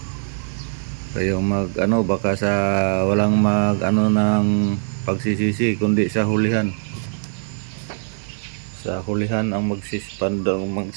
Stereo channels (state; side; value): silent; left; digital silence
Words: Kayo baka sa walang ng pagsisisi kundi sa hulihan. Sa hulihan ang